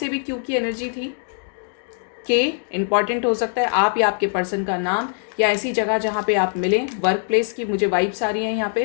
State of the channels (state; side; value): silent; right; 64 dB below the other